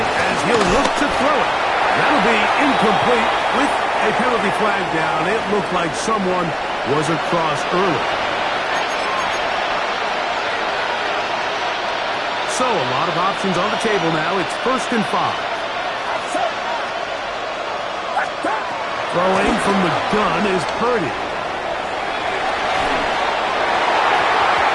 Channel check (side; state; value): both; identical; correlation 1.00